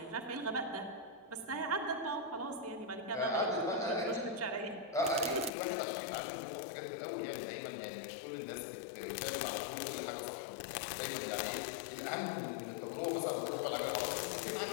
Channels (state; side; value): drops out; right; at 5.5 s